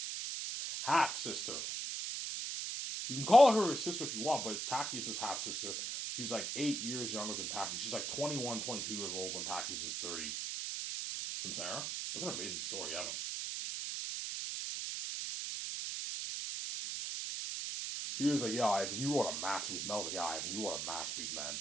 Half sister. You can call her his sister if you want, but it's Tactius's half sister. She's like 8 years younger than Tactius. She's like 21, 22 years old when Tactius is 30. Some Sarah? Look at an amazing story, Evan. He was like, yeah, Ivan, you wrote a masterpiece. Mel's like, yeah, Ivan, you wrote a masterpiece, man.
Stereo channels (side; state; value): right; noise; hiss, 3 dB below the sound